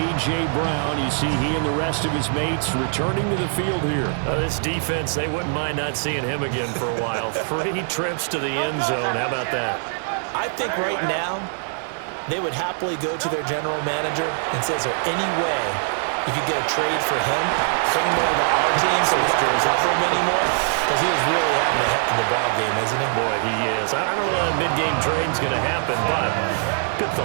Brown, you see he and the rest of his mates returning to the field here. This defense, they wouldn't mind not seeing him again for a while. 3 trips to the end zone. How about that? I think right now they would happily go to their general manager and say, is there any way you could get a trade for him, bring him over to our team so we don't cover him anymore? Because he is really having a heck of a ball game, isn't he? Boy, he is. I don't know that mid-game trade's going to happen, but good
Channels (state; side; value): silent; left; digital silence